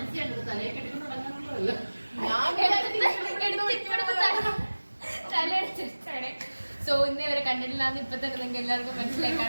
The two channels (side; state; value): both; inverted; correlation -1.00